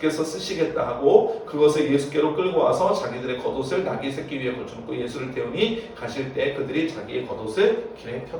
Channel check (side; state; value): both; identical; correlation 1.00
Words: 쓰시겠다 하고 그것을 예수께로 끌고 와서 자기들의 겉옷을 나귀 새끼 위에 걸쳐놓고 예수를 태우니 가실 때 그들이 자기의 겉옷을 길에